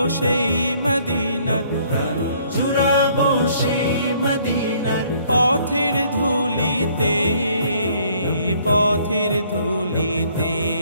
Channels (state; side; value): inverted; both; correlation -0.62